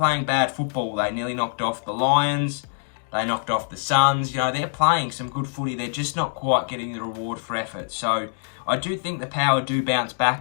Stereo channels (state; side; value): silent; right; digital silence